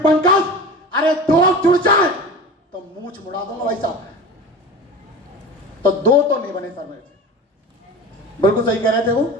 पंकज अरे 2 जुड़ जाए तो मूंछ मुड़ा दूंगा भाई साहब। तो 2 तो नहीं बने सर मेरे। बिल्कुल सही कह रहे थे वो,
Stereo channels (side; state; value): both; normal; correlation 0.33